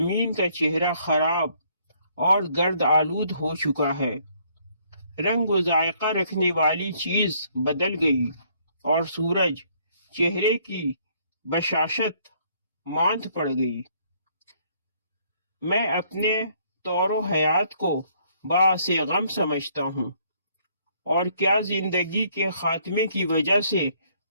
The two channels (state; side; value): inverted; both; correlation -0.65